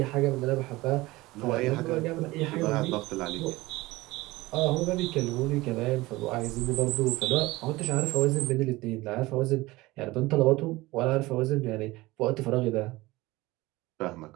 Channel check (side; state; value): left; quieter; 20.1 dB